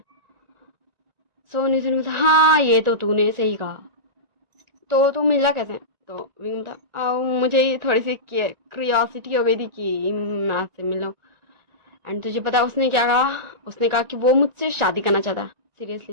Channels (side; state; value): left; late; 1.9 ms